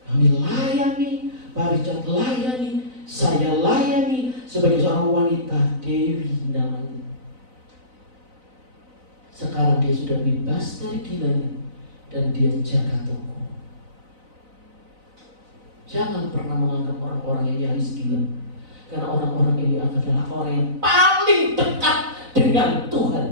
Kami layani Pak Richard layani, saya layani sebagai seorang wanita, Dewi namanya. Sekarang dia sudah bebas dari gilanya dan dia jaga toko. Jangan pernah menganggap orang-orang yang nyaris gila, karena orang-orang ini adalah orang yang paling dekat dengan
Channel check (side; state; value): left; late; 4.0 ms